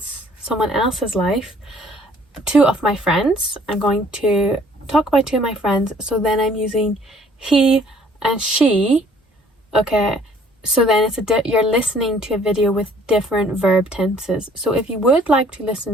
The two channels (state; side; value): normal; both; correlation 0.58